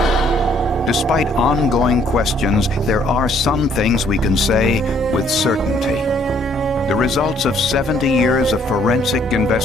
Despite ongoing questions, there are some things we can say with certainty. The results of 70 years of forensic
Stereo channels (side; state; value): both; normal; correlation 0.64